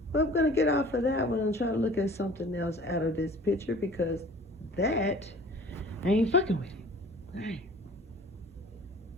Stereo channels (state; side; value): normal; both; correlation 0.47